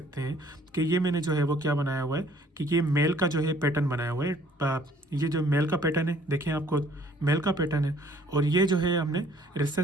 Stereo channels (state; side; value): normal; both; correlation 0.59